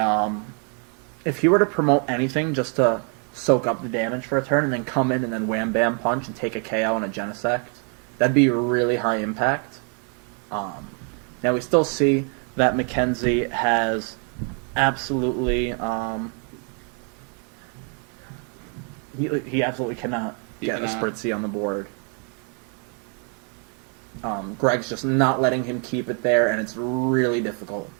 if he were to promote anything just to soak up the damage for a turn, and then come in and then wham-bam punch and take a KO and a Genesect, that'd be really high impact. Now, we still see that Mackenzie has absolutely he absolutely cannot get a Spritzy on the board. Greg's just not letting him keep it there, and it's really difficult.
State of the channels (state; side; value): quieter; left; 39.9 dB